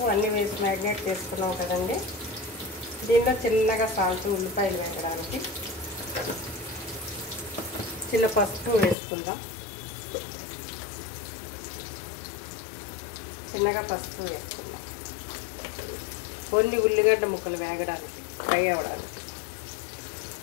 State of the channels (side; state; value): right; drops out; at 9.0 s